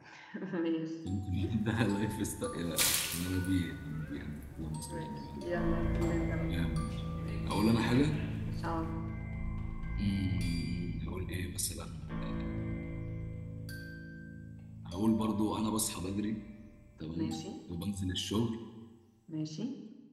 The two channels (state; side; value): identical; both; correlation 1.00